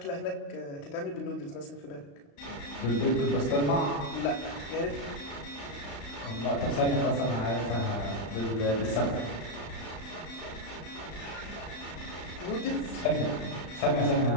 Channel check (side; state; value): right; late; 35 ms